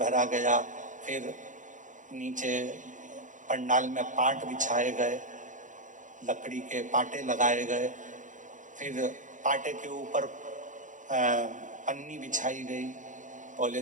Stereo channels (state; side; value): late; left; 0.37 ms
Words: गया। फिर नीचे पंडाल में पाट बिछाए गए, लकड़ी के पाटे लगाए गए, फिर पाटे के ऊपर पन्नी बिछाई गई,